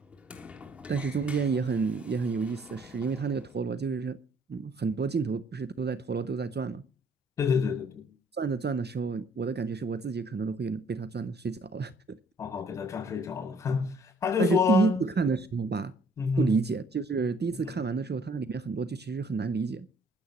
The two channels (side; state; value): both; normal; correlation 0.61